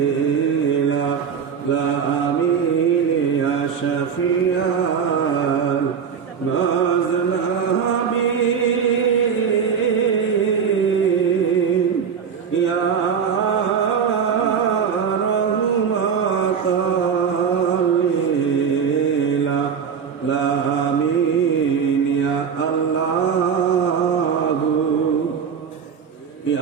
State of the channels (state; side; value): quieter; left; 6.9 dB